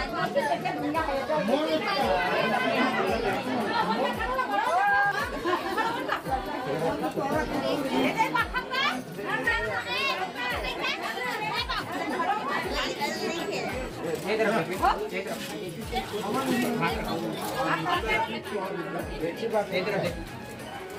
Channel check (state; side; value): identical; both; correlation 1.00